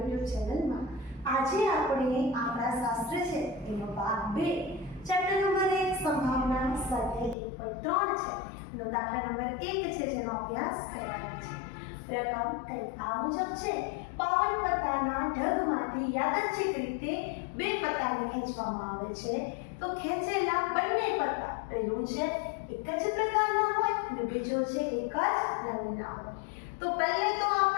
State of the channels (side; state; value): right; drops out; at 7.4 s